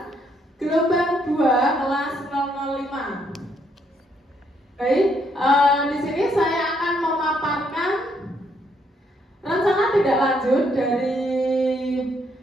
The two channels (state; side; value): normal; both; correlation 0.72